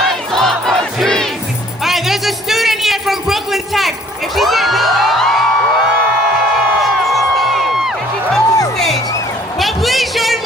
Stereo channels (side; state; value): both; normal; correlation 0.57